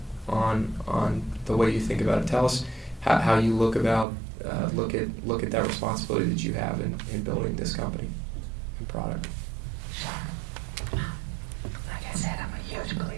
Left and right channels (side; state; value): left; drops out; at 4.0 s